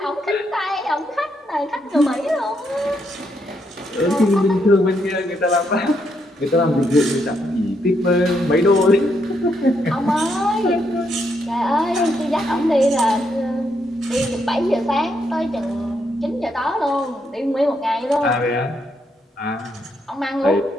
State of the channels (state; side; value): normal; both; correlation 0.77